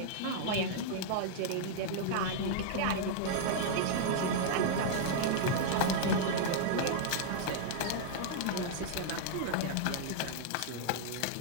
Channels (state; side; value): different; both; correlation -0.01